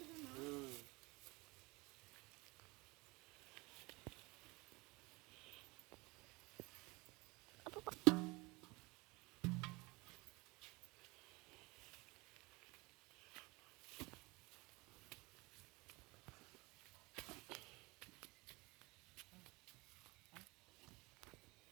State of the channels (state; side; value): quieter; left; 24.7 dB